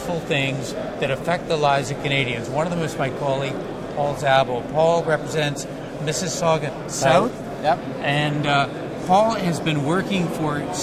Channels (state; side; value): identical; both; correlation 1.00